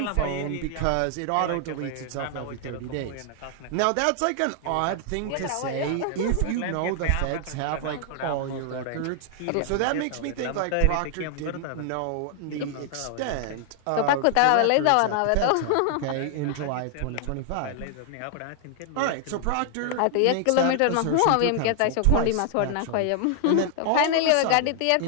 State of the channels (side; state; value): both; different; correlation 0.00